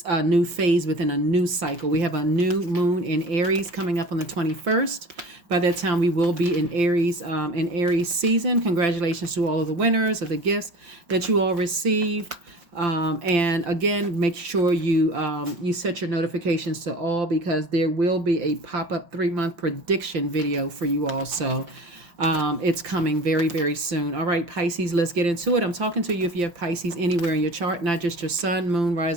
phase within a new cycle. We have a new moon in Aries coming up on the 21st. By that time, we will be in Aries season. Congratulations to all of the winners of the gifts that you all received. And again, make sure you set your notifications to all because there will be a pop-up 3-month prediction video for you all. So it's coming very, very soon. All right, Pisces, let's get into it. I'm talking to you if you have Pisces anywhere in your chart, not just your sun, moon,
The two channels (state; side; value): late; left; 5.8 ms